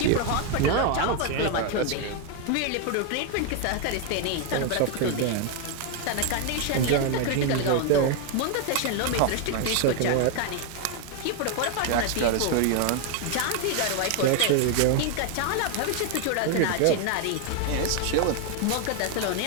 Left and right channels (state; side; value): different; both; correlation 0.01